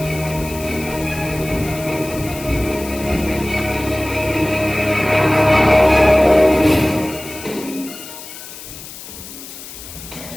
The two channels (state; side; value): noise; left; hiss, 14 dB below the sound